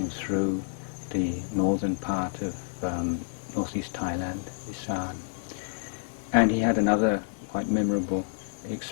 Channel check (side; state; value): right; silent; 59 dB below the other